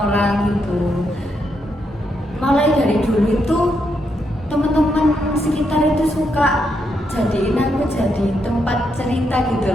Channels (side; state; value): both; normal; correlation 0.80